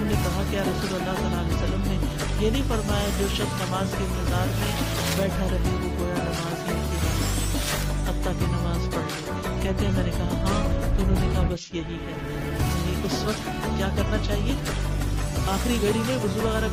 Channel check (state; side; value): identical; both; correlation 1.00